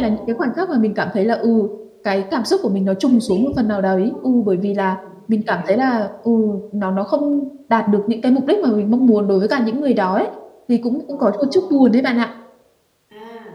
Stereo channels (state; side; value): identical; both; correlation 1.00